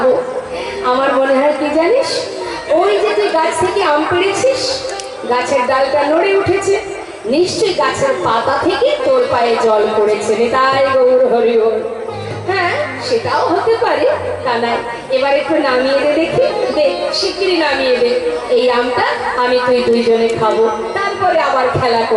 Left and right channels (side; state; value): both; identical; correlation 1.00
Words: আমার মনে হয় কি জানিস, ওই যে তুই গাছ থেকে আম পেড়েছিস, গাছের ডালটা নড়ে উঠেছে, নিশ্চয়ই গাছের পাতা থেকে তোর পায়ে জল পড়েছে। তাই গৌর হরি হরি। হ্যাঁ, সেটাও হতে পারে কানাই। এবার একটু নামিয়ে দে দেখি, দে শিগগিরই নামিয়ে দে। এই আমটা আমি তুই দুইজনে খাবো, তারপরে আবার খেলা